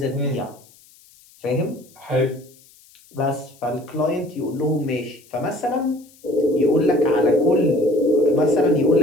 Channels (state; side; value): noise; left; hiss, 27 dB below the sound